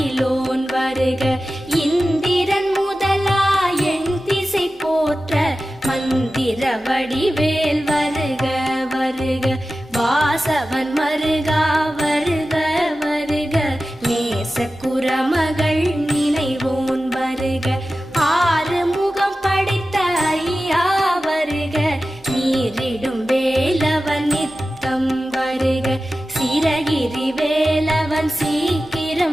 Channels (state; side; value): normal; both; correlation 0.94